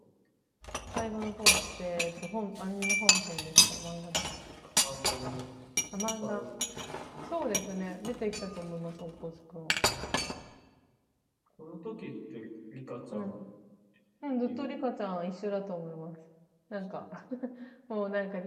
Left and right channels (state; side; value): identical; both; correlation 1.00